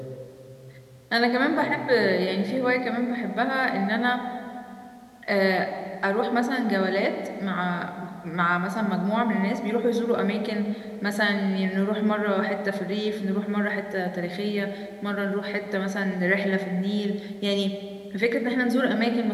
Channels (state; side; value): identical; both; correlation 1.00